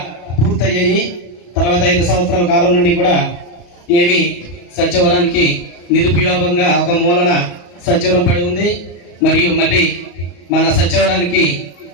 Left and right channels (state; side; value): late; right; 34 ms